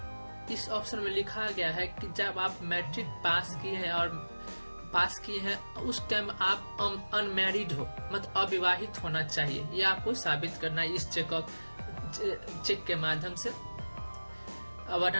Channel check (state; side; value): inverted; both; correlation -1.00